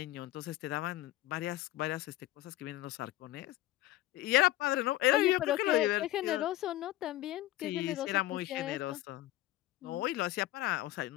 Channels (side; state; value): right; quieter; 15.2 dB